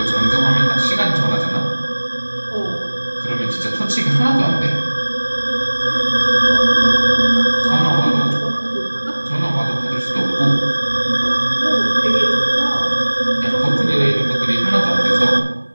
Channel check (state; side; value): inverted; both; correlation -1.00